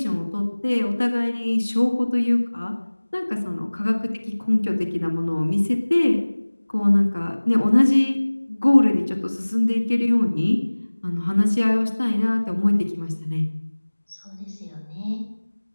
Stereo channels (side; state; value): both; inverted; correlation -1.00